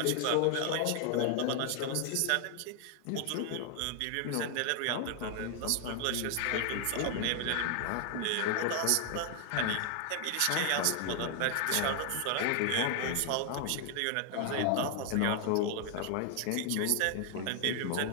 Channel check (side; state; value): both; different; correlation 0.00